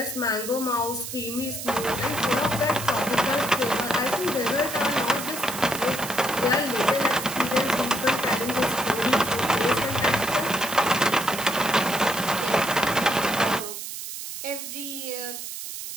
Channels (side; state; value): right; noise; hiss, 8 dB below the sound